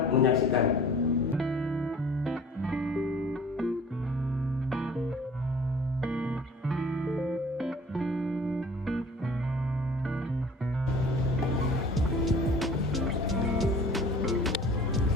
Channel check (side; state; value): both; normal; correlation 0.47